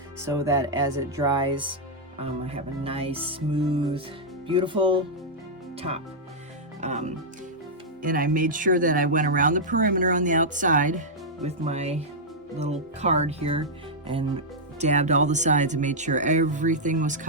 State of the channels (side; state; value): both; normal; correlation -0.07